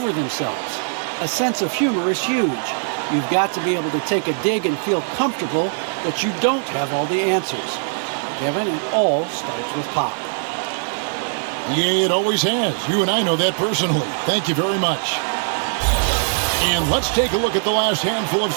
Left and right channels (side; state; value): left; silent; digital silence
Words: themselves. A sense of humor is huge. You've got to be able to take a dig and feel comfortable that you don't have all the answers. Kevin, it all starts with Pop. Yeah, it always has. You and I know that personally. Thank you very much. And let's take a look at the last handful of